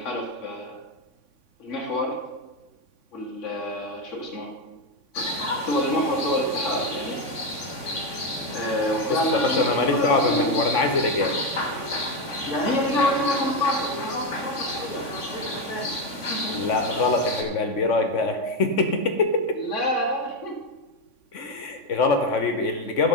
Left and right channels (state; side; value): late; right; 3.5 ms